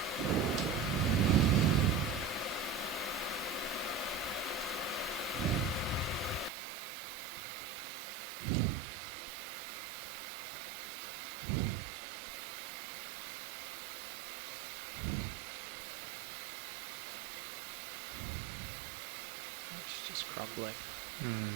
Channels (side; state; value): left; drops out; at 6.5 s